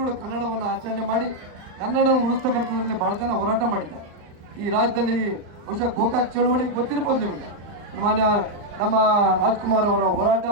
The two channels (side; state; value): left; late; 39 ms